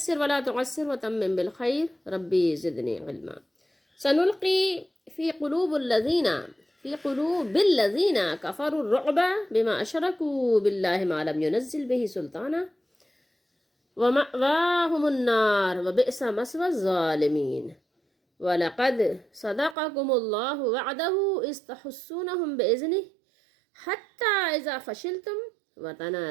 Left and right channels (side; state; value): left; drops out; at 19.8 s